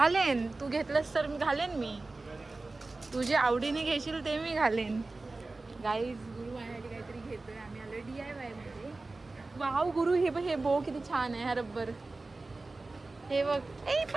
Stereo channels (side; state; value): left; quieter; 3.3 dB